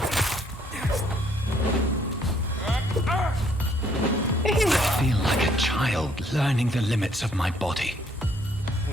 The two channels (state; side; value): normal; both; correlation 0.66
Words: I feel like a child learning the limits of my body.